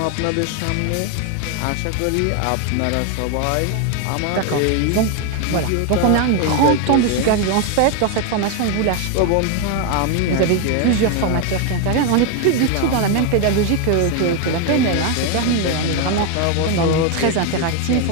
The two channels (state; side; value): different; both; correlation 0.01